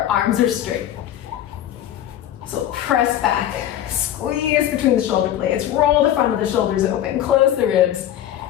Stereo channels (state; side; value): quieter; right; 11.7 dB